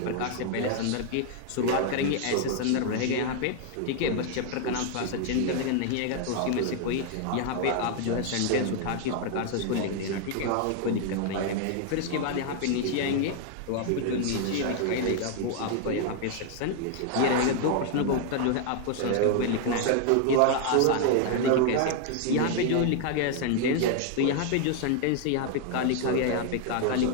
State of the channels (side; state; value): both; different; correlation 0.00